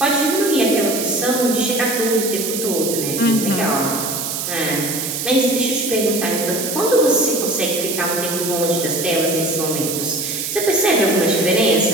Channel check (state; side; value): noise; right; hiss, 4 dB below the sound